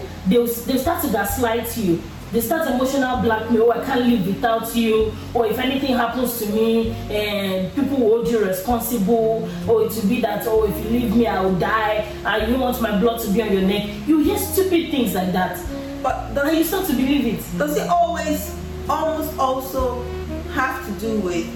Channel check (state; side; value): identical; both; correlation 1.00